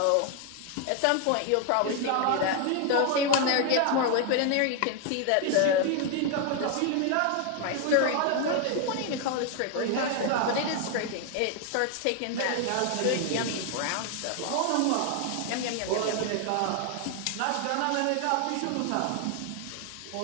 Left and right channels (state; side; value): different; both; correlation 0.00